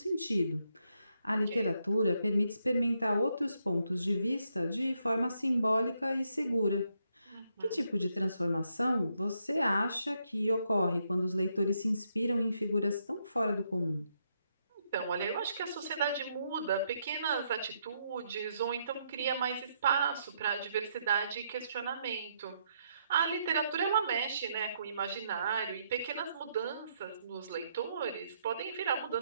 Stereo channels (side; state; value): both; inverted; correlation -0.76